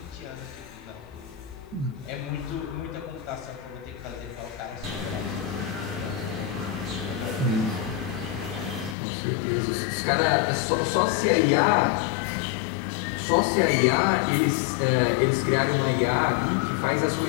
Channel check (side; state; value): right; drops out; at 9.0 s